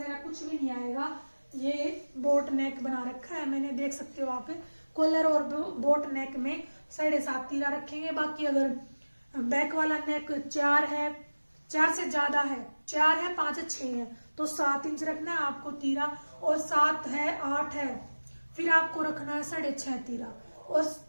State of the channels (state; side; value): inverted; both; correlation -1.00